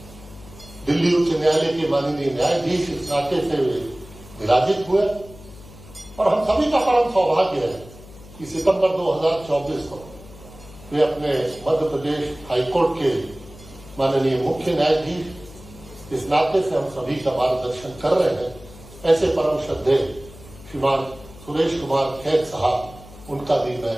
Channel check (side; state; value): left; noise; hum, 19 dB below the sound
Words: दिल्ली उच्च न्यायालय के माननीय न्यायाधीश इस नाते से विराजित हुए और हम सभी का परम सौभाग्य है कि सितंबर 2024 को वे अपने मध्य प्रदेश हाईकोर्ट के माननीय मुख्य न्यायाधीश इस नाते से हम सभी का मार्गदर्शन कर रहे हैं। ऐसे परम श्रद्धेय श्रीमान सुरेश कुमार खैर साहब, उनका भी मैं